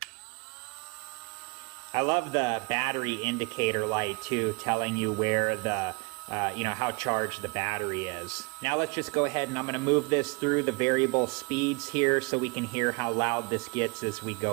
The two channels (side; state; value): left; quieter; 29.1 dB